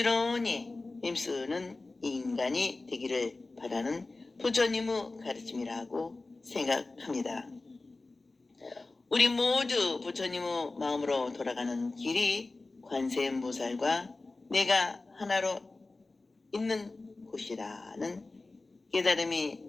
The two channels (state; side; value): quieter; right; 3.4 dB